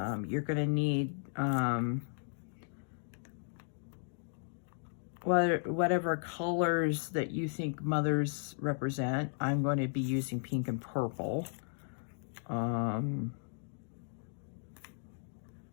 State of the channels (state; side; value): silent; right; digital silence